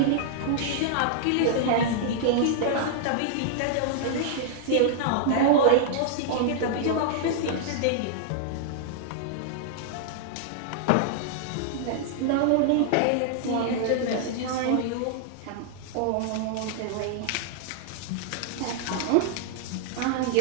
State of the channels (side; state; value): both; different; correlation -0.01